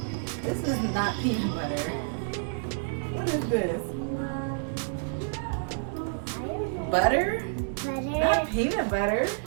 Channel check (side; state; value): left; silent; 58 dB below the other